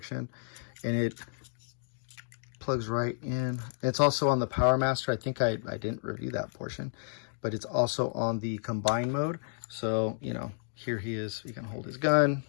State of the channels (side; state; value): right; silent; digital silence